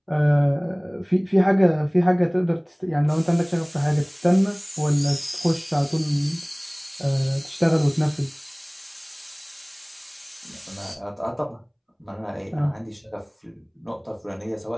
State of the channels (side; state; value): both; identical; correlation 1.00